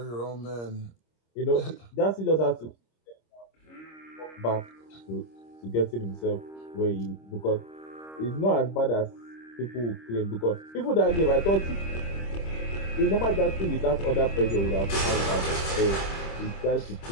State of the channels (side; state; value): right; late; 26 ms